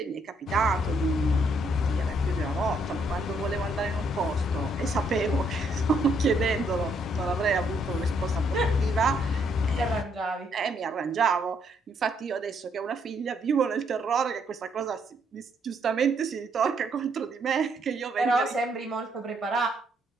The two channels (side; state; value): both; normal; correlation 0.71